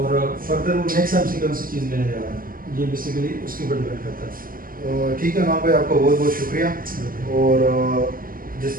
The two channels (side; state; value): left; late; 0.41 ms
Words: فردر وہ نیکسٹ ہم سے کون سی چیز لینے جا رہا ہے، یہ بیسیکلی اس کے اوپر ڈپینڈ کرتا ہے. ٹھیک ہے نعمان بھائی، آپ کا بہت بہت شکریہ. اور جس